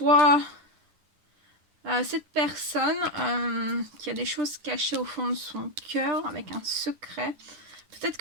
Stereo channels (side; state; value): left; late; 10 ms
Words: Cette personne qui a des choses cachées au fond de son cœur avec un secret, peut-être